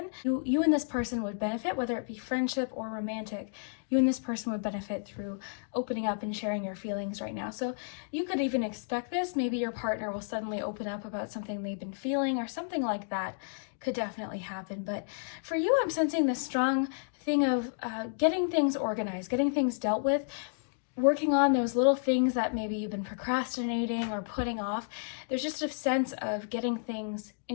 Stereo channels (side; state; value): right; silent; digital silence